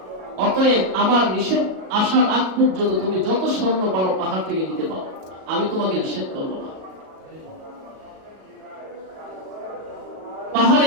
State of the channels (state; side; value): late; left; 37 ms